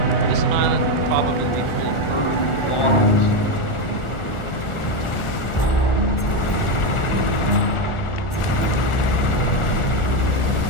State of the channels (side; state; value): right; late; 1.4 ms